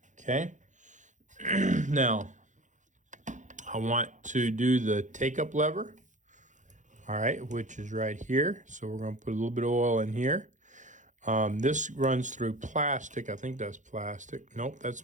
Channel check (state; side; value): late; left; 0.36 ms